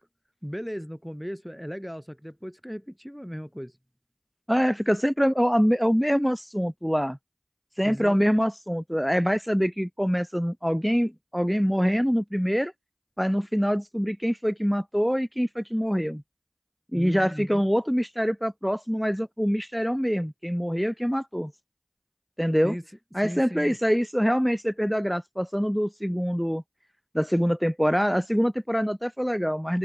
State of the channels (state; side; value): identical; both; correlation 1.00